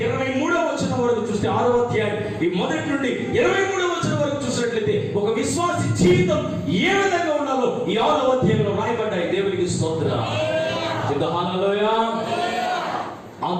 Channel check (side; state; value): both; identical; correlation 1.00